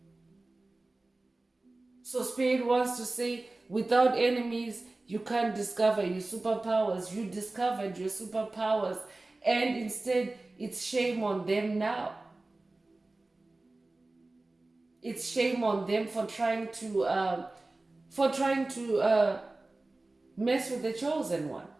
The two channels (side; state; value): left; quieter; 3.0 dB